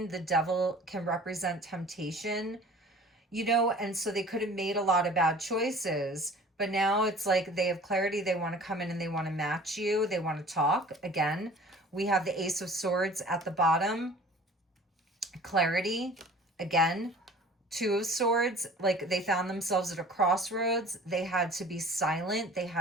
The devil can represent temptation, you know, and so they could have made a lot of bad choices. But now it's like they have clarity. They want to come in and they want to match you. They want to talk. Again, we have the Ace of Swords at the bottom. Clarity. Again, Two of Swords. Like they found themselves at a crossroads. They had to be silent. They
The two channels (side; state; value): both; normal; correlation 0.46